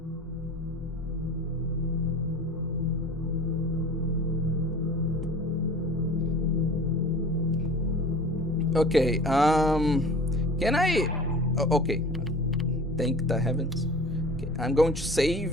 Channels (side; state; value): both; normal; correlation 0.41